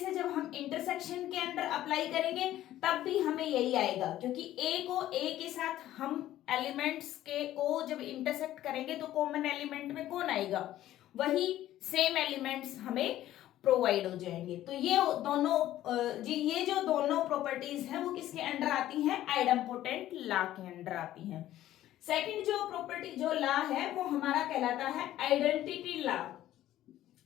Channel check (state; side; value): quieter; right; 13.5 dB